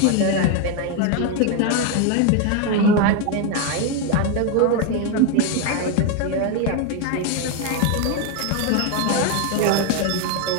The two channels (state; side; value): different; both; correlation 0.01